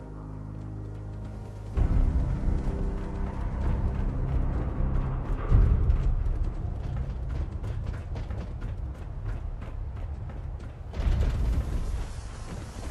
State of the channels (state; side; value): identical; both; correlation 1.00